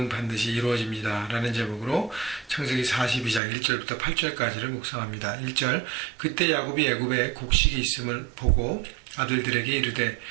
반드시 이루어집니다 라는 제목으로 창세기 42장 1절부터 8절까지를 묵상합니다. 1절 그때 야곱이 애굽에 곡식이 있음을 보고 아들들에게 이르되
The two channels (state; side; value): drops out; left; at 3.4 s